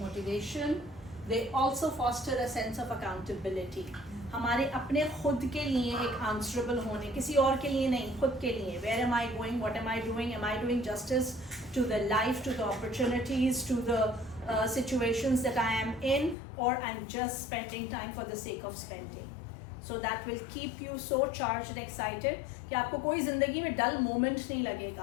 They also foster a sense of accountability. हमारे अपने खुद के लिए एक answerable होने, किसी और के लिए नहीं, खुद के लिए. Where am I going? What am I doing? Am I doing justice to the life, to the opportunities, to the situations that I am in, or I'm just spending time for the sake of spending? So that will keep you so charged and excited कि आपको कोई ज़िंदगी में dull moment नहीं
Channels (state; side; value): drops out; right; at 16.4 s